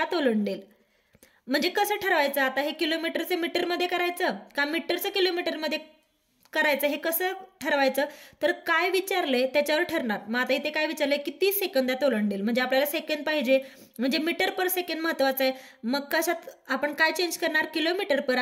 ओलांडेल. म्हणजे कसं ठरवायचं आता हे किलोमीटरचं मीटरमध्ये करायचं का मीटरचं किलोमीटरमध्ये करायचं हे कसं ठरवायचं तर काय विचारलंय त्याच्यावर ठरणार. मग आता इथे काय विचारलंय किती सेकंदात ओलांडेल म्हणजे आपल्याला सेकंद पाहिजे म्हणजे मीटर पर सेकंद महत्वाचं आहे. मग कशात आपण काय चेंज करणार किलोमीटर पर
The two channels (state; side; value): identical; both; correlation 1.00